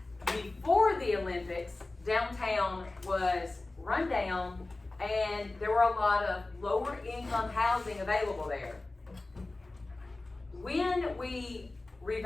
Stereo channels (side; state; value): right; quieter; 3.1 dB